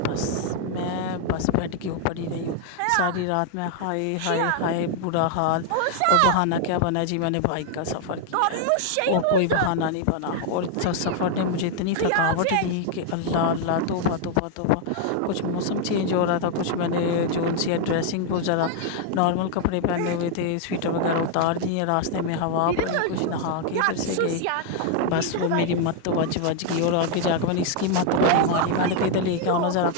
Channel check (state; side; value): different; both; correlation 0.00